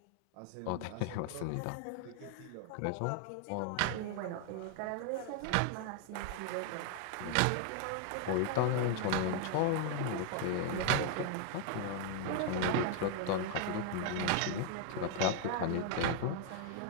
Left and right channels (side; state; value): both; different; correlation 0.00